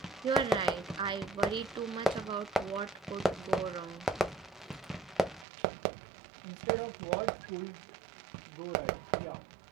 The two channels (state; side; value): drops out; left; at 5.5 s